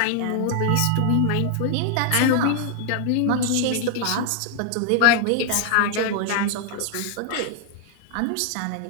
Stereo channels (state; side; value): different; both; correlation 0.00